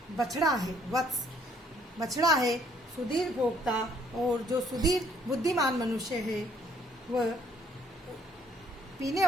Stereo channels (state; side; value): normal; both; correlation 0.65